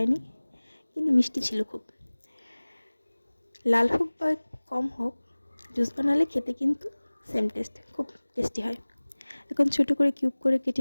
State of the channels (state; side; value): inverted; both; correlation -1.00